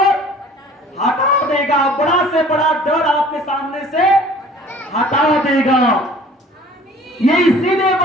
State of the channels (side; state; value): both; normal; correlation 0.49